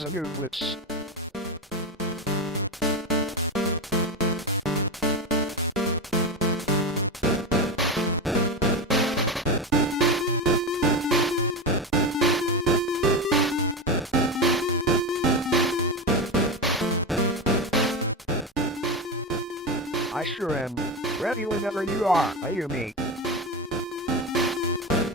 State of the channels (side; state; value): both; normal; correlation 0.18